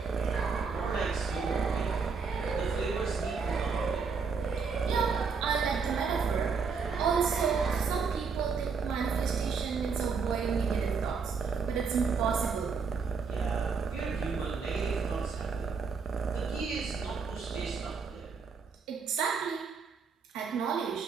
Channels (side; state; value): left; quieter; 5.4 dB